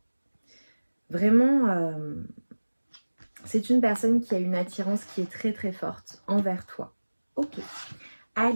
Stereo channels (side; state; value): both; inverted; correlation -1.00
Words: Vraiment, c'est une personne qui a une attirance qui est très très forte envers toi. Ok,